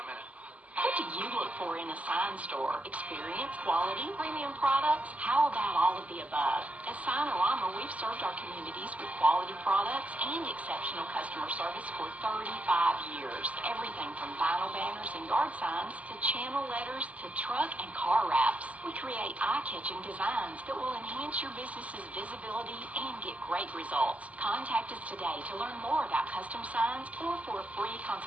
a minute. What do you look for in a sign store? Experience, quality, premium products? How about all of the above? At Signorama, we've served our communities with quality products and exceptional customer service for 35 years. Everything from vinyl banners and and yard signs to channel letters to truck and car wraps. We create eye-catching designs that will enhance your business's visibility and get great results. Contact us today to learn more about custom signs or for a free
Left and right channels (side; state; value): left; late; 0.069 ms